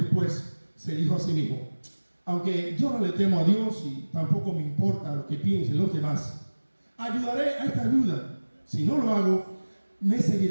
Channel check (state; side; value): inverted; both; correlation -1.00